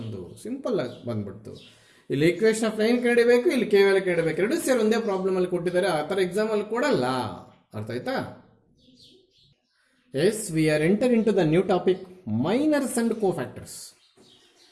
ಸಿಂಪಲ್ ಆಗಿ ಬಂದ್ಬಿಡ್ತು. ಇಲ್ಲಿ ಈಕ್ವೇಷನ್ ಆಫ್ ಲೈನ್ ಕಂಡಿಬೇಕು, ಇಲ್ಲಿ ಕೆ ವ್ಯಾಲ್ಯೂ ಕಂಡಿಬೇಕು. ಎರಡು ಸೇರಿ ಒಂದೇ ಪ್ರಾಬ್ಲಮ್ ಅಲ್ಲಿ ಕೊಟ್ಟಿದ್ದಾರೆ. ಆ ಥರ ಎಕ್ಸಾಮ್ ಅಲ್ಲಿ ಕೊಡಲ್ಲ. ಅರ್ಥ ಆಯ್ತಾ? Yes, we are enter in to the new topic, minors and cofactors.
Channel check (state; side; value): identical; both; correlation 1.00